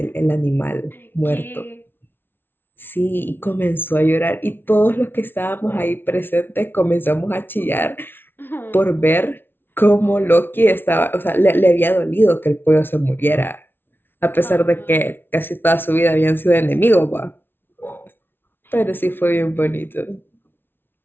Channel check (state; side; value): late; right; 0.10 ms